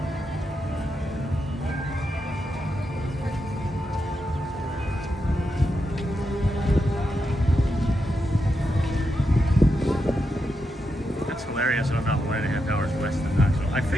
That's hilarious. I'm about 1.5 hours west of Knoxville. I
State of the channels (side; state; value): both; normal; correlation 0.85